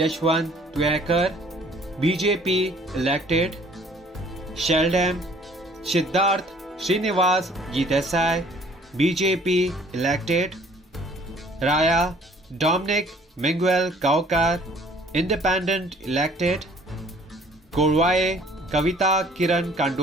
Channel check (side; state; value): both; normal; correlation 0.56